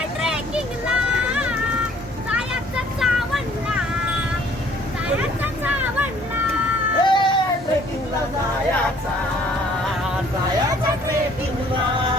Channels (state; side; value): normal; both; correlation 0.58